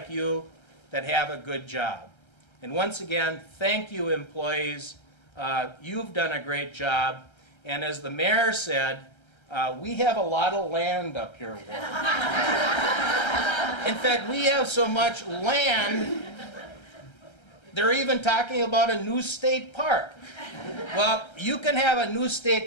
you that have a good job? And once again, thank you, employees. You've done a great job. And as the mayor said, we have a lot of land up here, Ward. In fact, we have so much land, they're even talking about a new state park. Well, you can have a new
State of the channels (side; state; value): right; late; 1.3 ms